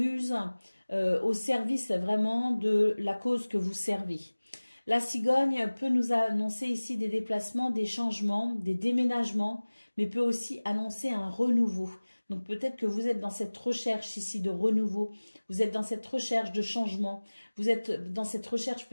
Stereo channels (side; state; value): both; inverted; correlation -1.00